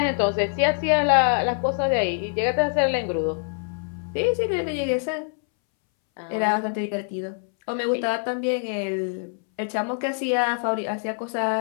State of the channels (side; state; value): right; silent; 62 dB below the other